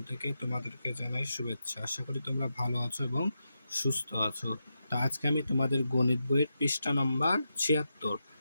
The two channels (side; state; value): both; inverted; correlation -0.87